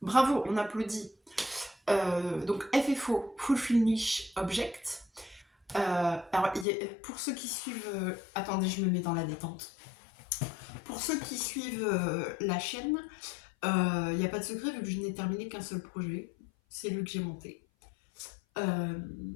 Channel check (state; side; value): drops out; right; at 6.7 s